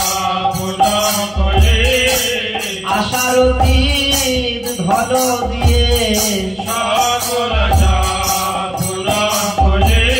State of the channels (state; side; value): noise; right; hum, 29 dB below the sound